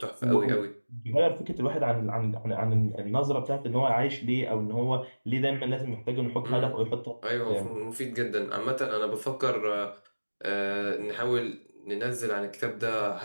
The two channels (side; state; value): both; inverted; correlation -1.00